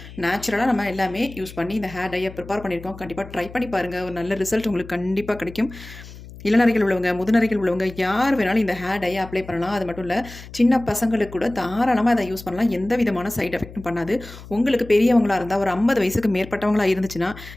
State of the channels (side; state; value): left; noise; hum, 16 dB below the sound